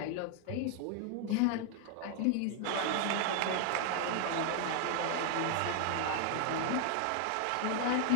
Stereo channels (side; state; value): both; different; correlation 0.00